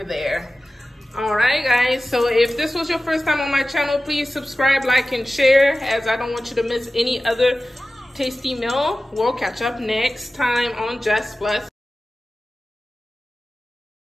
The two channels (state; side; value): normal; both; correlation 0.96